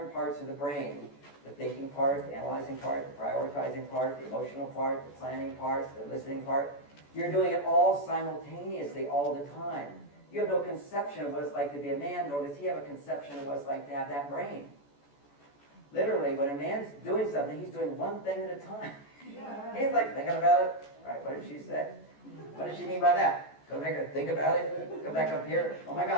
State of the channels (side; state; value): right; late; 14 ms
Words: parts of the brain, the thinking part, the analyzing part, the prioritizing part, the emotional part, the planning part, the listening part. You're doing it all simultaneously all the time. You have no conception of what it's like to be a man, nor does he have a conception of what it's like to have that brain. Literally, when a man's doing something, he's doing one thing at a time. He's like thinking about it. All right, what did she say? What did she mean by that? Go make her think about it. Come back up here. Oh my